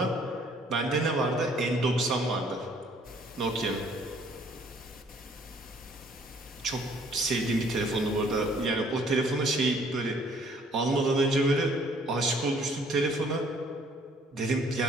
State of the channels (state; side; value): normal; both; correlation 0.61